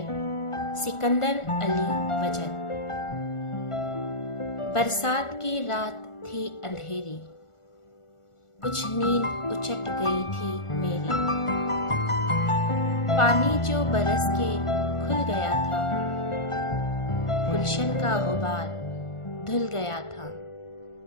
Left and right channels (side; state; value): right; late; 1.4 ms